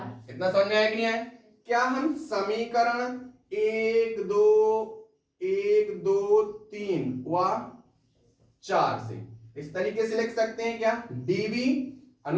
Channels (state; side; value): identical; both; correlation 1.00